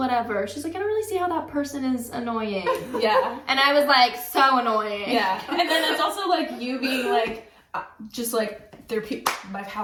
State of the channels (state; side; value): identical; both; correlation 1.00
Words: She's like, "I don't really see how that person is annoying," Yeah. and I was like, "So annoying." Yeah. And then it's also, like, you being, like, just, like, my